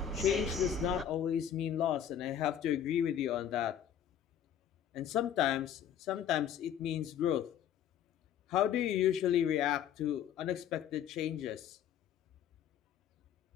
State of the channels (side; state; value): right; quieter; 9.4 dB